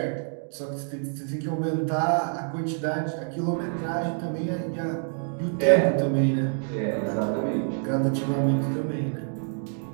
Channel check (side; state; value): left; silent; 58 dB below the other